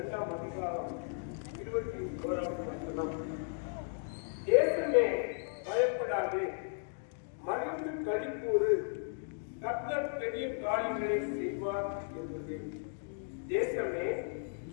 அதிகாரம் 21ஆம் வசனம். தேசமே பயப்படாது, மகிழ்ந்து களிக்கூறு, கர்த்தர் பெரிய காரியங்களை செய்வார் என்பது. தேசமே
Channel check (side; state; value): right; silent; digital silence